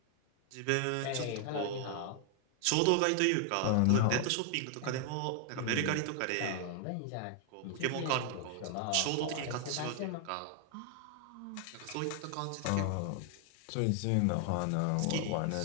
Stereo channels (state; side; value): different; both; correlation 0.00